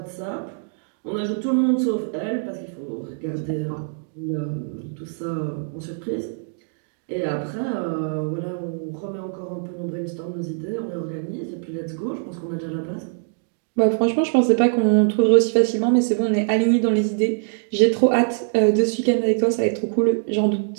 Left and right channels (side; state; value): left; silent; digital silence